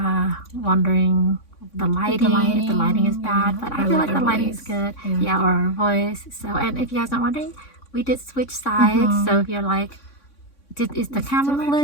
wondering the lighting is bad, but I feel like the lighting is good. Yeah, or our voice. So, and if you guys are wondering, we did switch sides. So if you're like, is the camera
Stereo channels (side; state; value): right; late; 3.6 ms